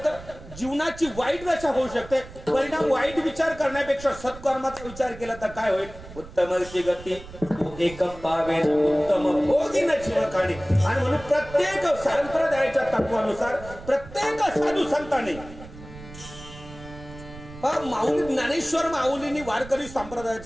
जीवनाची वाईट दशा होऊ शकते. परिणाम वाईट विचार करण्यापेक्षा सत्कर्माचा विचार केला तर काय होईल? उत्तमची गती एक पावे उत्तम भोगिन जीवखाणी. आणि म्हणून प्रत्येक संप्रदायाच्या तत्वानुसार प्रत्येक साधू संतांनी माऊली ज्ञानेश्वर माऊलींनी वारकरी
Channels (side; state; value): right; noise; rumble, 16 dB below the sound